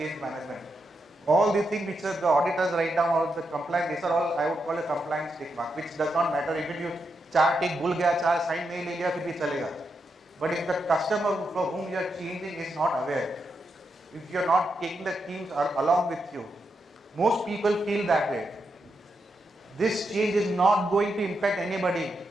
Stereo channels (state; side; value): normal; both; correlation 0.84